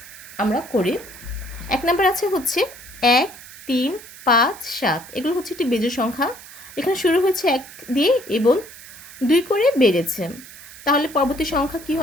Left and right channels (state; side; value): noise; right; hiss, 17 dB below the sound